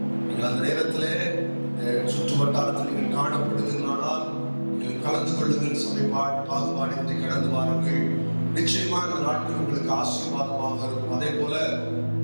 நீங்கள் அந்த நேரத்திலே சுற்று வட்டாரத்தில் நீங்கள் காணப்படுவீர்களானால் நீங்கள் கலந்து கொள்ளுங்கள். சபை பாகுபாடின்றி கடந்து வாருங்கள். நிச்சயமாக இந்த நாட்கள் உங்களுக்கு ஆசீர்வாதமாக இருக்கும். அதே போல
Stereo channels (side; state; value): both; inverted; correlation -1.00